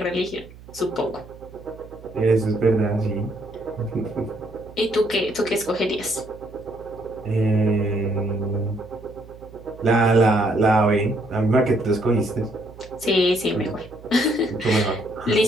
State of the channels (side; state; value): right; noise; hum, 20 dB below the sound